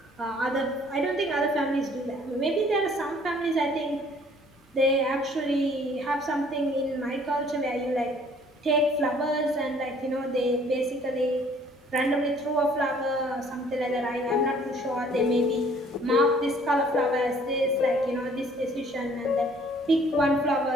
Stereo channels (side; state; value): both; normal; correlation 0.57